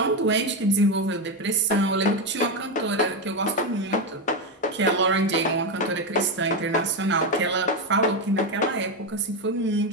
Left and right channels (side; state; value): both; normal; correlation 0.10